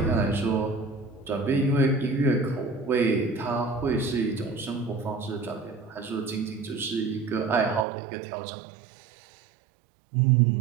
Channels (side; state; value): left; drops out; at 7.9 s